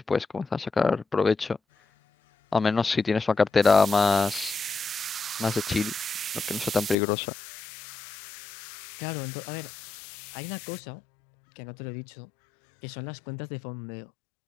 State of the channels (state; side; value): drops out; right; at 7.0 s